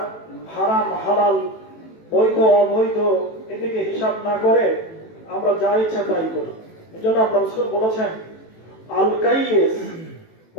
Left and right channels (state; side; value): late; right; 18 ms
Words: হারাম হালাল, বৈধ অবৈধ এদিকে হিসাব না করে আমরা যা ইচ্ছা তাই করি। এই জন্য আল্লাহ রাসূল বলেছেন, আল কাইয়িস,